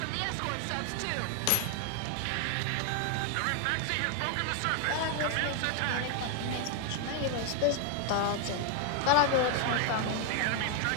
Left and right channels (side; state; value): both; different; correlation 0.00